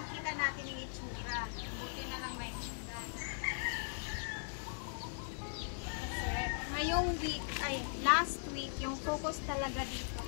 natin yung itsura. Buti na lang may hagdanan. Kasi, ngayong week, last week, yung focus talaga dito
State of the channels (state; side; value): silent; right; digital silence